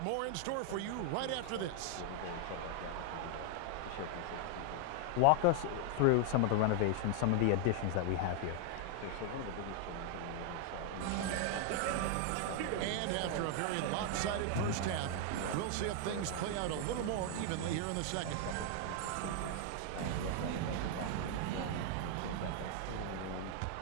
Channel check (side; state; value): both; different; correlation 0.00